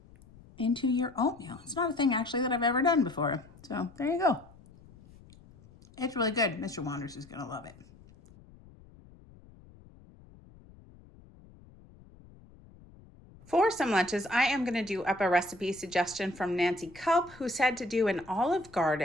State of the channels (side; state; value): left; noise; rumble, 23 dB below the sound